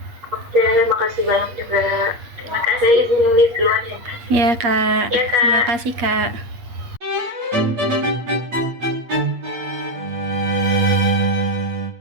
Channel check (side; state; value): left; late; 8.5 ms